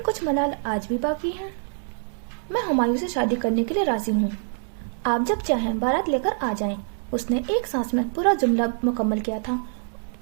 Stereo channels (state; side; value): silent; left; digital silence